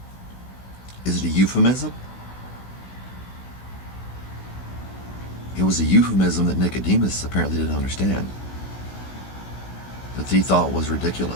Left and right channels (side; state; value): right; late; 16 ms